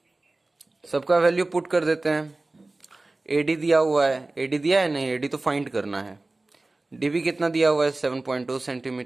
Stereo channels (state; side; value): quieter; left; 3.0 dB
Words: सबका वैल्यू पुट कर देते हैं। एडी दिया हुआ है, एडी दिया है नहीं, एडी तो फाइंड करना है। डीबी कितना दिया हुआ है 7.2